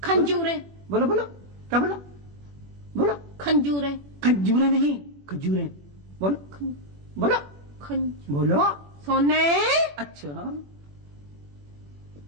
खंजूरे। बोलो बोलो, क्या बोलो? बोलो खंजूरें। खंजूरें नहीं, खजूरें। बोलो बोलो बोलो। सोने। अच्छा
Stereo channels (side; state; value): left; late; 21 ms